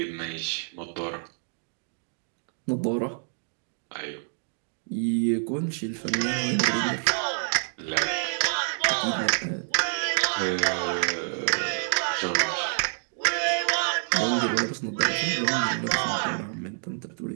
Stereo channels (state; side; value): silent; left; digital silence